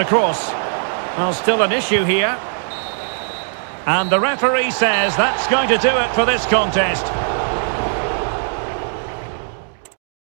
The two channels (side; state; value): left; silent; digital silence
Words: cross. Well, still an issue here. And the referee says that's going to do it for this contest.